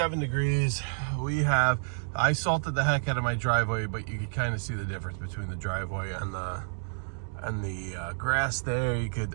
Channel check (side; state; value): left; silent; digital silence